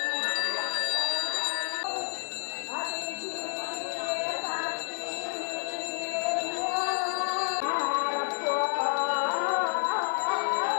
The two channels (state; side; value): silent; right; 58 dB below the other